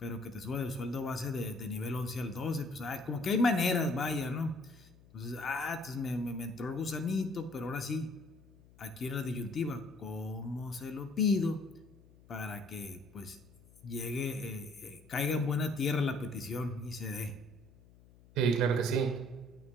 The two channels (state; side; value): noise; left; hum, 24 dB below the sound